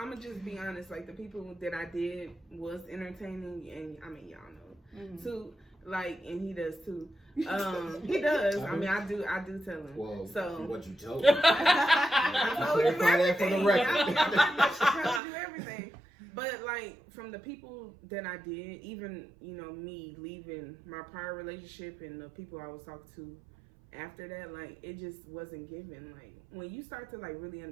gonna just be honest. Like the people that I did was entertaining, and I mean, y'all know too. Like, and he does too. He does. I mean, I do tell him. Well, so what you told me? I told you everything. For the record. I told you everything. But like from the people that I did, even me leaving my prior relationship and the people I was talking to after that, like it just wasn't given. Like when you start to like really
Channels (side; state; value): left; drops out; at 15.2 s